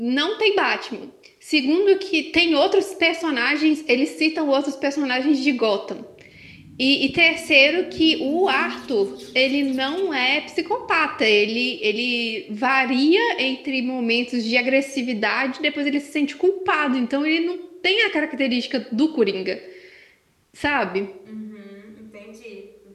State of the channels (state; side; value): identical; both; correlation 1.00